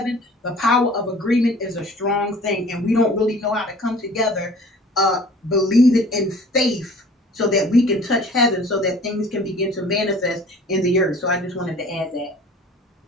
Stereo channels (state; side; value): normal; both; correlation 0.48